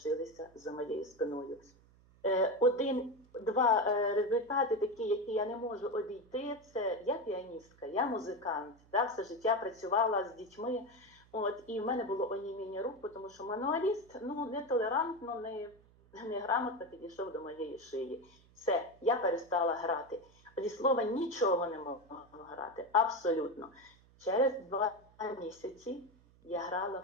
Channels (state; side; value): noise; right; hum, 28 dB below the sound